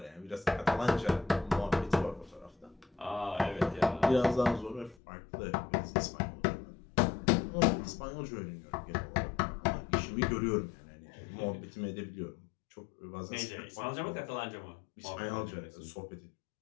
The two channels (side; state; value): right; drops out; at 5.0 s